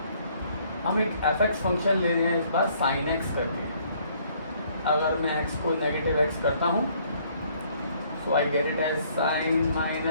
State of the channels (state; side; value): inverted; both; correlation -0.63